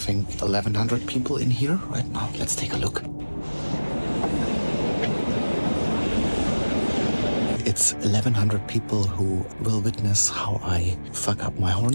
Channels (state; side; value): inverted; both; correlation -1.00